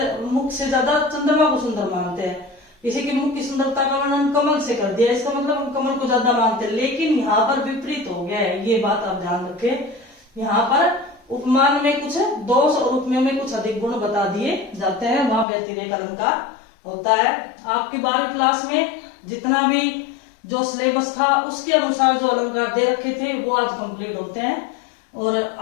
मुख से ज्यादा चंद्रमा को सुंदर मानते हैं। किसी के मुख की सुंदरता का वर्णन कमल से कर दिया, इसका मतलब हम कमल को ज्यादा मानते हैं। लेकिन यहाँ पर विपरीत हो गया है, ये बात आप ध्यान रखें। यहाँ पर उपमान में कुछ दोष और उपमेय में कुछ अधिक गुण बता दिए जाते हैं, वहां व्यतिरेक अलंकार होता है। आपकी 12वीं क्लास में जितना भी जो सिलेबस था उसके अनुसार जो अलंकार दे रखे थे वो आज कंप्लीट होते हैं और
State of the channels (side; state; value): right; drops out; at 15.5 s